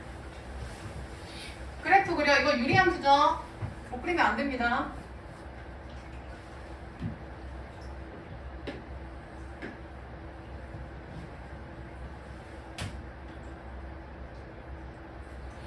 그래프 그려. 이거 유리함수죠? 못 그리면 안 됩니다.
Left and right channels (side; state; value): both; identical; correlation 1.00